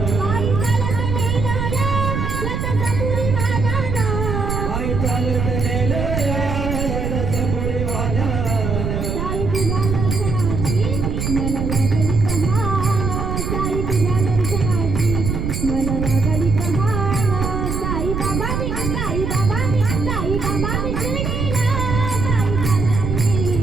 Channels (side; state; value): right; noise; rumble, 2 dB below the sound